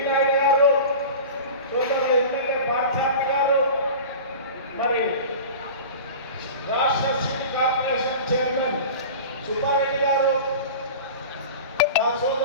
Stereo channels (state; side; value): inverted; both; correlation -0.35